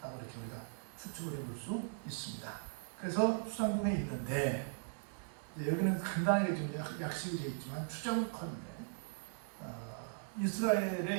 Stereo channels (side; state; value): left; silent; digital silence